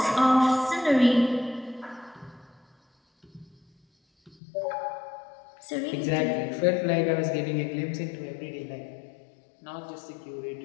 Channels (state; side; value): drops out; right; at 4.4 s